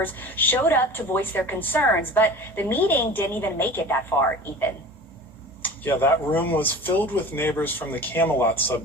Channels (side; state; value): both; normal; correlation 0.38